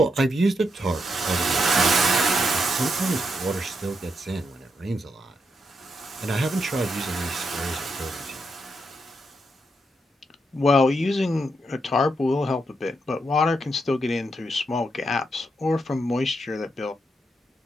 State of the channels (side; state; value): both; normal; correlation 0.81